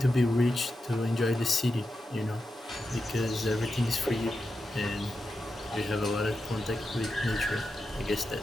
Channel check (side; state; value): both; normal; correlation 0.89